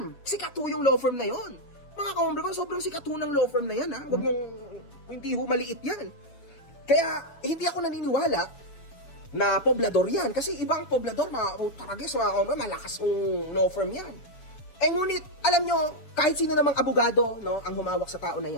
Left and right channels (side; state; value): right; late; 7.2 ms